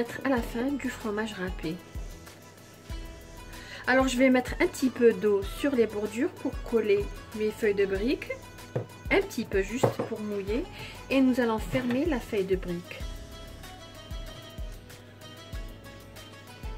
à la fin du fromage râpé. Alors je vais mettre un petit peu d'eau sur les bordures pour coller mes feuilles de briques. Un petit peu juste pour mouiller. Et nous allons fermer la feuille de brique.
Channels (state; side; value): identical; both; correlation 1.00